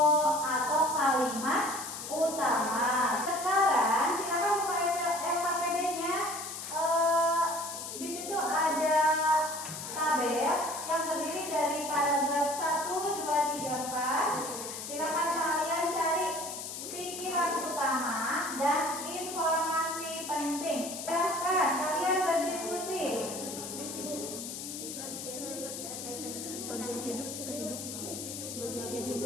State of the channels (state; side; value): noise; left; hiss, 8 dB below the sound